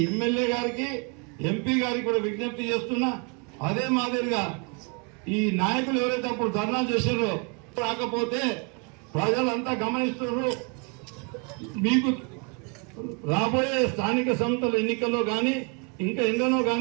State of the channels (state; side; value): quieter; left; 35.6 dB